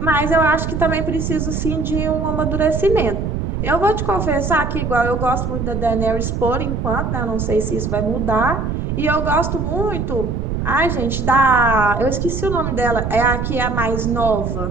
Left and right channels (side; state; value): right; noise; rumble, 2 dB below the sound